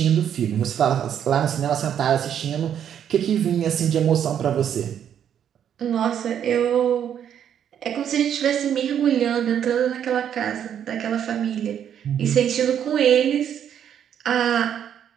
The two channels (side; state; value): left; quieter; 9.2 dB